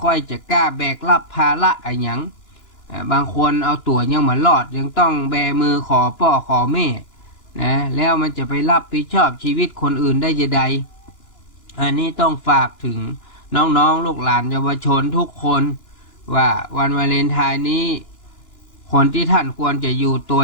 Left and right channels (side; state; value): right; late; 2.9 ms